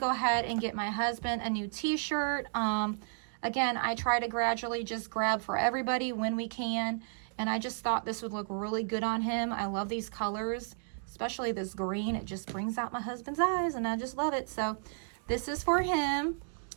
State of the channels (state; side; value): silent; left; digital silence